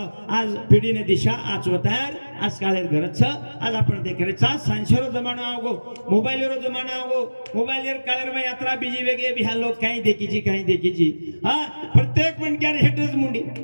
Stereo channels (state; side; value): inverted; both; correlation -1.00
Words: आज पिढीने दिशा आचवतार आज कालेर गरज आज आपण देखरेचा सांशरो जमाना आवगो मोबाइलरो जमाना आवगो मोबाइलर कालेर में यात्रा बीजी वेगे बिहार लोग काही देखीची हाँ प्रत्येक मनक्यार हेटच मुंडी